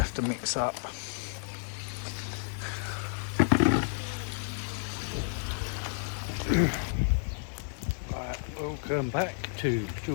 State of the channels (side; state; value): right; silent; digital silence